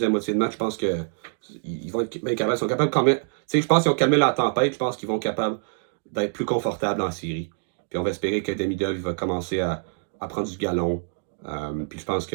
moitié de match, je pense qu'ils vont être bien capables. Ils sont capables quand même. Tu sais, je pense qu'ils ont calmé la tempête. Je pense qu'ils vont être capables d'être plus confortables en série. Puis on va espérer que Demidov va commencer à prendre du galon. Puis je pense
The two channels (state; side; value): silent; left; 62 dB below the other